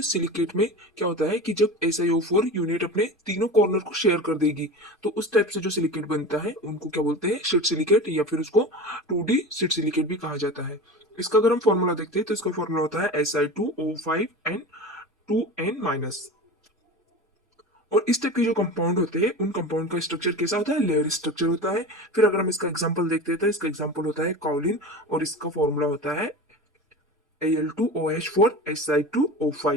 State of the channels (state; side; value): normal; both; correlation 0.30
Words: सिलिकेट में क्या होता है कि जब SiO4 यूनिट अपने तीनों कॉर्नर को शेयर कर देगी तो उस टाइप से जो सिलिकेट बनता है उनको क्या बोलते हैं, शीट सिलिकेट, या फिर उसको 2D शीट सिलिकेट भी कहा जाता है। इसका अगर हम फॉर्मूला देखते हैं तो इसका फॉर्मूला होता है Si2O5N2N-। और इस टाइप के जो कंपाउंड होते हैं उन कंपाउंड का स्ट्रक्चर कैसा होता है, लेयर स्ट्रक्चर होता है। फिर अगर हम इसका एग्जांपल देखते हैं तो इसका एग्जांपल होता है काउलिन और इसका फॉर्मूला होता है